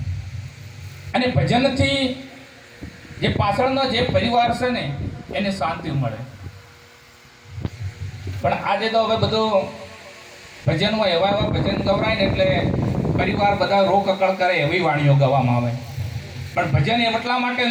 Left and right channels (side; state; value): both; identical; correlation 1.00